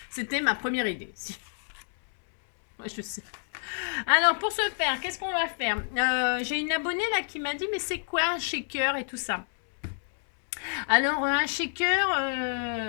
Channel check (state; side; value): silent; right; 59 dB below the other